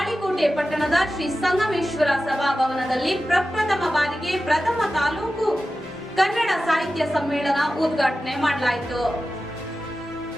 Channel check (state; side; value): normal; both; correlation 0.94